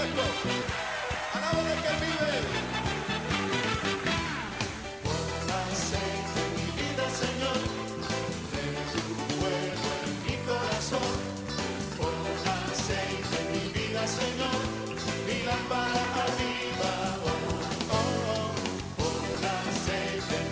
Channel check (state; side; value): identical; both; correlation 1.00